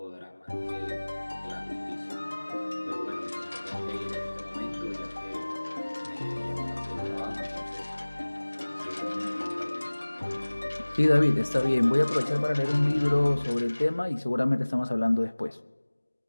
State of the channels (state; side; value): inverted; both; correlation -1.00